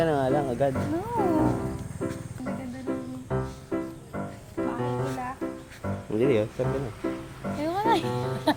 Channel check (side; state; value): both; identical; correlation 1.00